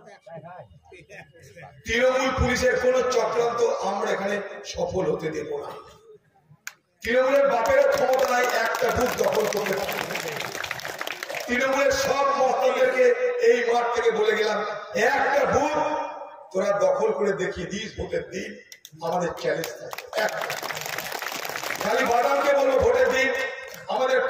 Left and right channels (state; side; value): identical; both; correlation 1.00